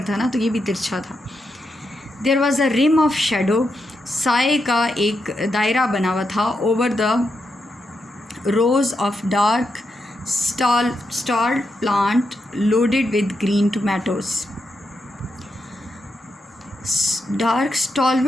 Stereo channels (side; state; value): both; normal; correlation 0.84